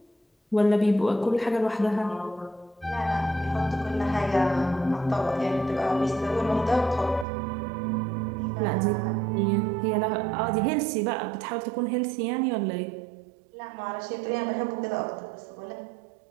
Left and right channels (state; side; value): drops out; left; at 7.2 s